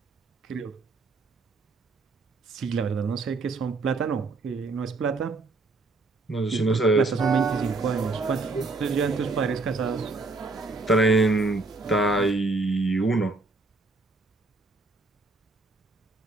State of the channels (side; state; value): left; quieter; 3.5 dB